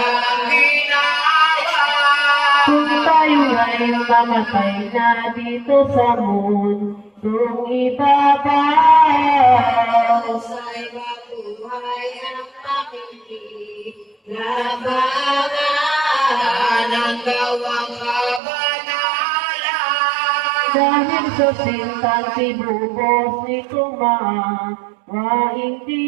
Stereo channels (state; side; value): drops out; left; at 18.4 s